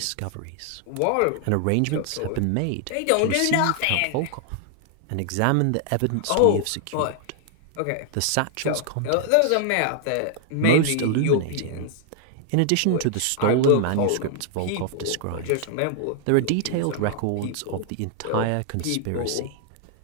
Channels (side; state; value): both; different; correlation 0.00